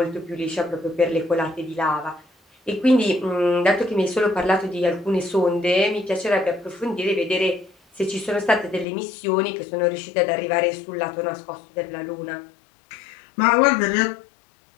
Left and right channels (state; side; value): drops out; right; at 8.8 s